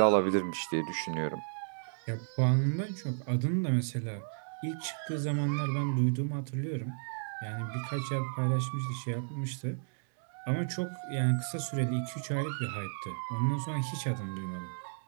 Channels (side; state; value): left; silent; digital silence